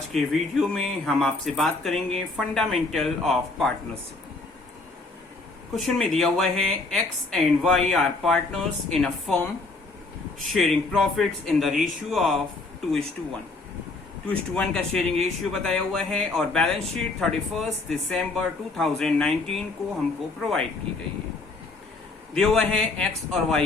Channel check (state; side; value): quieter; right; 3.5 dB